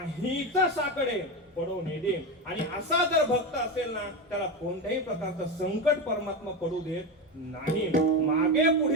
साकडे पडू नये दे. आणि असा जर भक्त असेल ना, त्याला कोणत्याही प्रकारचं संकट परमात्मा पडू देत नाही. मागे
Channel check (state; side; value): normal; both; correlation 0.17